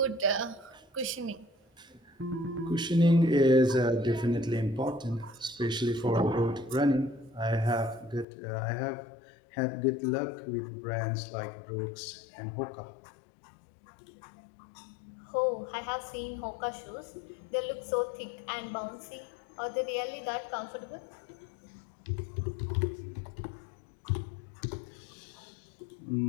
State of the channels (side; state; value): right; drops out; at 8.2 s